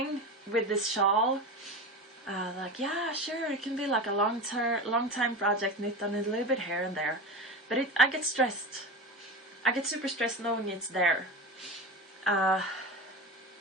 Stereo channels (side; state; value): both; normal; correlation 0.27